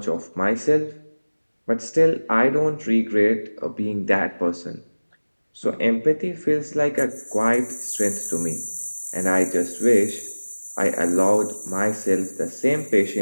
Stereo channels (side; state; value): both; inverted; correlation -1.00